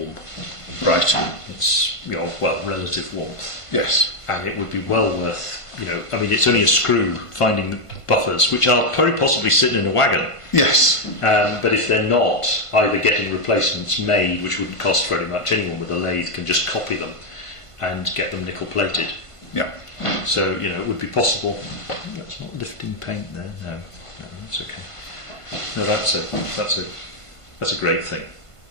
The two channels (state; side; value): late; right; 1.5 ms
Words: Right. It's, relative warmth. Yes. And it would be well worth, it's only a screw finding the buffers, which are very possibly sitting in a wagon. Yes. But if they're not, either getting replacements made, which wouldn't cost very much, anyone with a lathe can just copy them and get them nickel plated. Yeah. So, it would be possible. That's not lifting paint there. No, that's okay. No, that's a great thing.